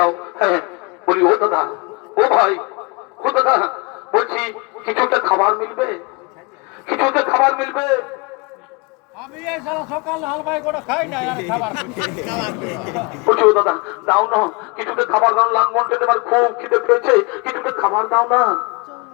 হ্যাঁ বলি ও দাদা, ও ভাই, ও দাদা বলছি কিছু একটা খাবার মিলবে, কিছু একটা খাবার মিলবে। আমি এই সারা সকাল হালবাই করে খাই না আর খাবার বলছি ও দাদা দাও না, কিছুটা খাবার দাও, লাঙ্গল টেনে আমার খুব খিদে পেয়েছে, কিছুটা খাবার দাও না।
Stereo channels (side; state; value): right; quieter; 29.3 dB